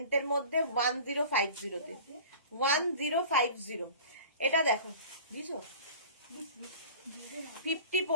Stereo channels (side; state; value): both; inverted; correlation -0.42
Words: মধ্যে 1050-তে 1050। এটা দেখো বুঝছো, 50